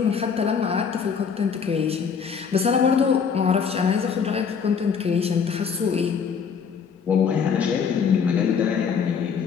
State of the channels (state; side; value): quieter; right; 6.5 dB